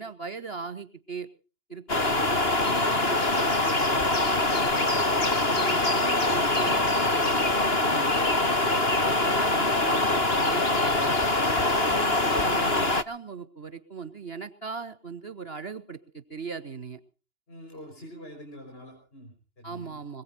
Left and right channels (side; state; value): right; late; 2.9 ms